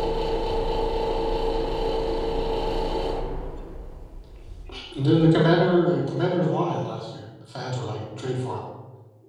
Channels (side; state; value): both; identical; correlation 1.00